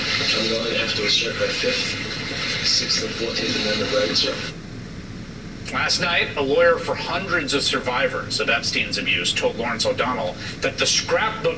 going to have to assert my 5th, 6th, and 14th Amendment rights, sir. Last night, a lawyer for hundreds of survivors of Epstein's abuse told Lawrence O'Donnell that the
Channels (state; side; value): identical; both; correlation 1.00